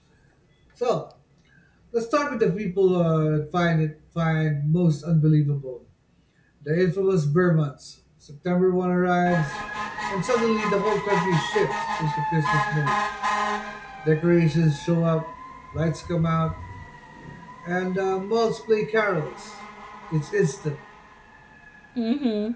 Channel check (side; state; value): both; identical; correlation 1.00